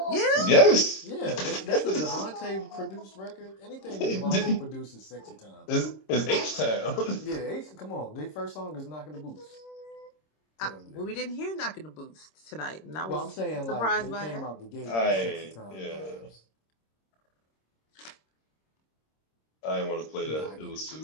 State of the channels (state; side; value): late; right; 26 ms